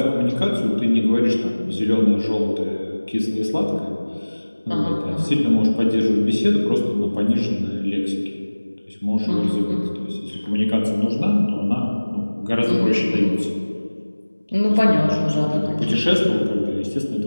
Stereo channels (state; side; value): inverted; both; correlation -1.00